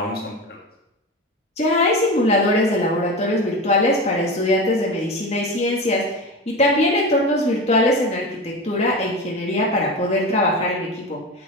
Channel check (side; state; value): both; normal; correlation 0.26